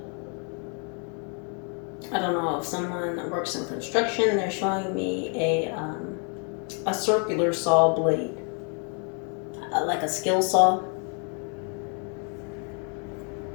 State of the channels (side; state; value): right; quieter; 39.4 dB